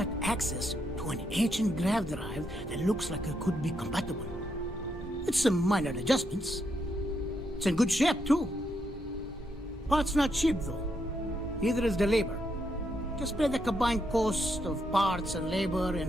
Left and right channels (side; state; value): both; normal; correlation 0.79